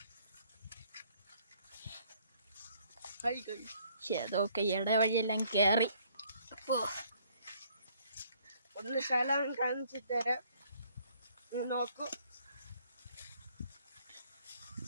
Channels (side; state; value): both; inverted; correlation -0.64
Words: അതൊക്കെ ഇടവഴിയെല്ലാം കയറി. ഒന്ന് സ്ഥലം കാണിച്ചു തരാം, നോക്കൂ.